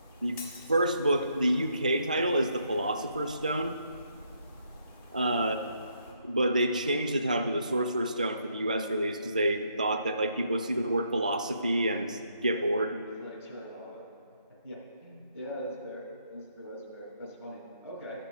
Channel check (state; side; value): inverted; both; correlation -0.73